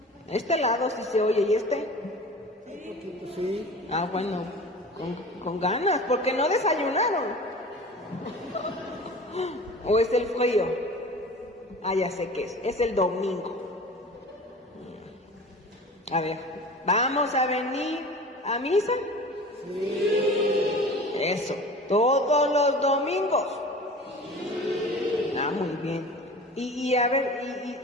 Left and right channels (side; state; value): both; normal; correlation 0.38